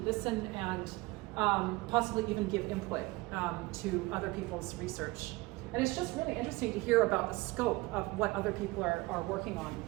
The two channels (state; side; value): quieter; left; 22.1 dB